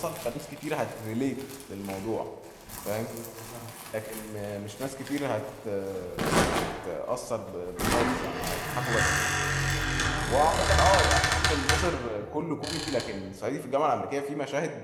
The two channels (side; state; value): both; identical; correlation 1.00